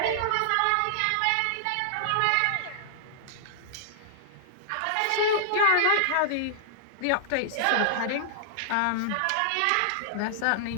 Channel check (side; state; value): both; different; correlation -0.01